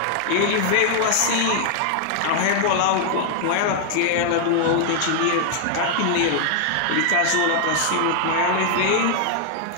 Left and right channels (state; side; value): different; both; correlation 0.00